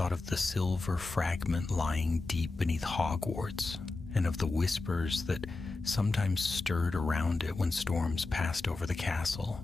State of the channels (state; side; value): quieter; right; 3.5 dB